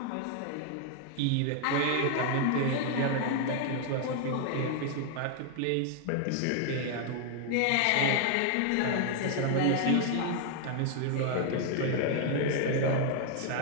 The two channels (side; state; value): both; different; correlation 0.00